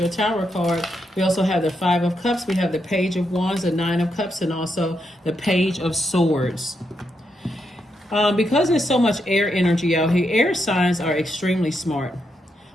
your Tower card. We also have the Five of Cups. We have the Page of Wands, the Nine of Cups, and also the Page of Swords. Because there's so much air energy out here, air signs are extremely smart.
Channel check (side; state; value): both; normal; correlation 0.82